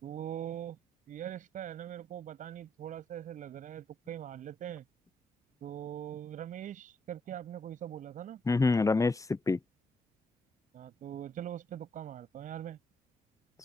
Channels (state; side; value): normal; both; correlation 0.76